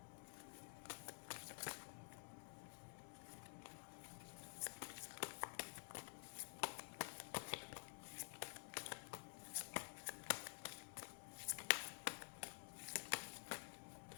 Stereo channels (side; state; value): right; silent; digital silence